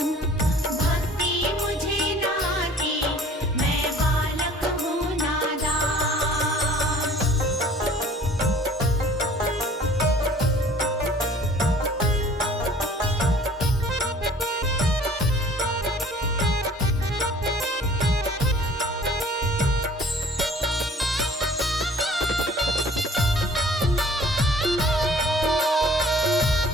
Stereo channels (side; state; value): both; normal; correlation 0.52